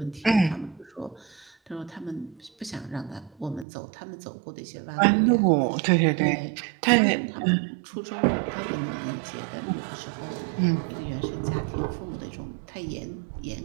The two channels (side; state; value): left; drops out; at 3.7 s